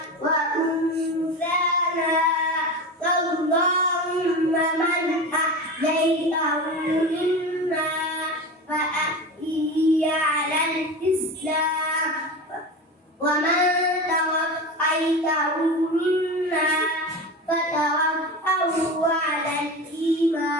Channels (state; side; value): normal; both; correlation 0.27